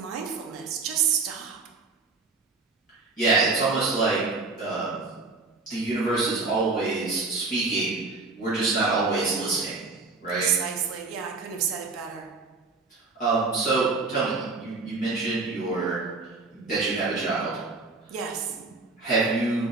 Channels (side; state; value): left; quieter; 3.8 dB